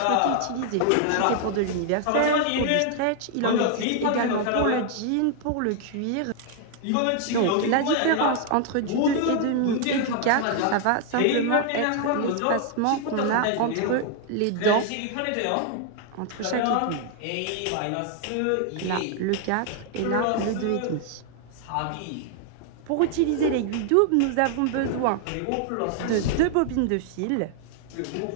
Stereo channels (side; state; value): both; different; correlation 0.00